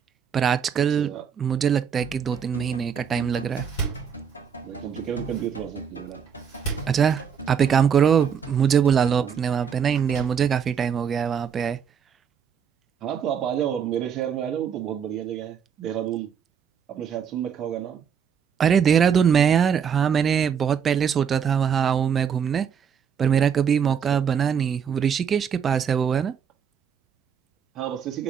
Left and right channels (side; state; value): left; quieter; 7.6 dB